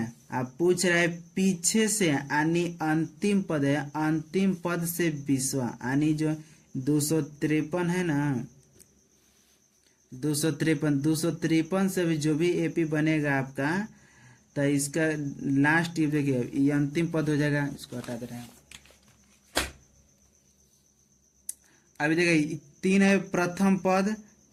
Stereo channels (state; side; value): identical; both; correlation 1.00